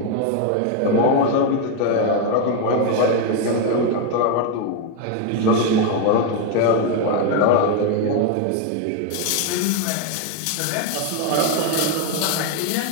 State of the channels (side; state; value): both; different; correlation 0.01